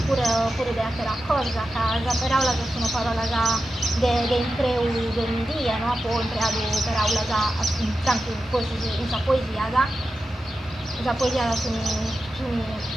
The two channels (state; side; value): normal; both; correlation 0.91